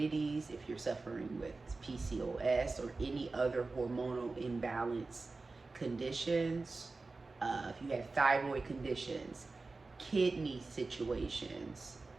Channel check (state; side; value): quieter; left; 3.7 dB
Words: if you're suffering with PCOS or any other hormonal imbalance conditions, if you have thyroid conditions, kidney situations,